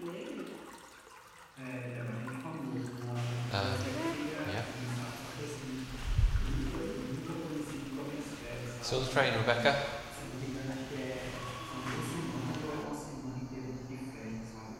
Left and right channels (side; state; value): both; identical; correlation 1.00